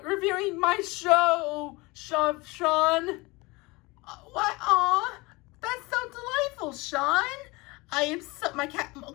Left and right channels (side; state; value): right; quieter; 24.1 dB